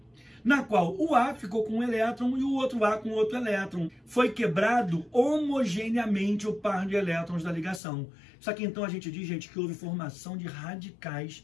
na qual o A ficou com um elétron e o outro A com outro elétron. Foi quebrado homogeneamente o par de elétrons da ligação. Só que então a gente diz, gente, que houve formação de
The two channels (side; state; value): right; drops out; at 7.8 s